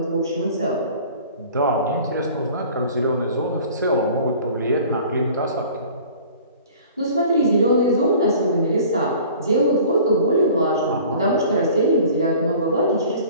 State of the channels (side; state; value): both; inverted; correlation -0.46